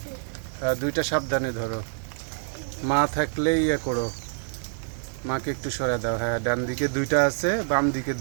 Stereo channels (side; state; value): left; silent; digital silence